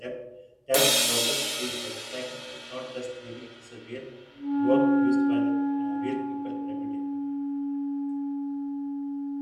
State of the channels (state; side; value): identical; both; correlation 1.00